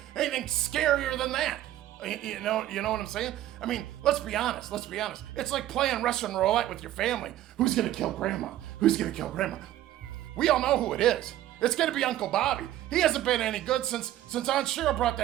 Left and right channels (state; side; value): quieter; left; 13.4 dB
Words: scarier than that. You know what I'm saying? I mean, let's be honest. It's like playing Russian roulette with your family. Who's gonna kill Grandma? We all know who it is. It's gonna be Uncle Bobby. He hasn't been any good since Aunt Cheryl brought